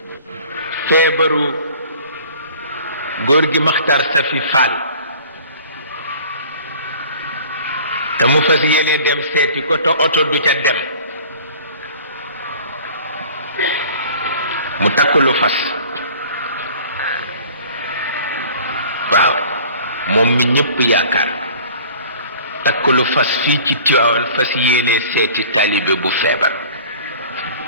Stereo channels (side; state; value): both; inverted; correlation -0.47